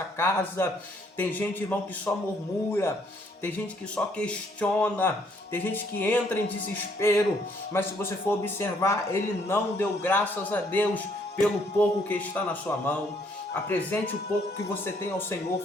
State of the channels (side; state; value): both; normal; correlation 0.67